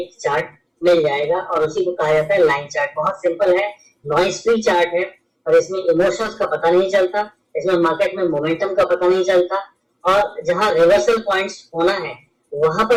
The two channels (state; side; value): identical; both; correlation 1.00